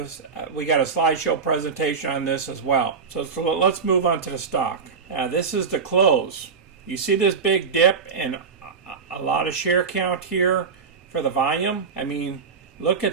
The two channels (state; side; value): quieter; left; 5.6 dB